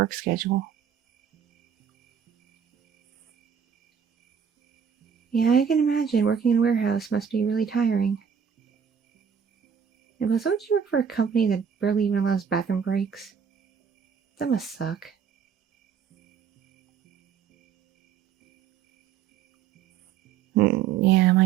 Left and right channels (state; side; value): quieter; left; 7.4 dB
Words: schedule. Yeah, I can imagine working in a warehouse must be really tiring. And plus, don't you work for a company that barely even allows bathroom breaks? That must suck. Yeah,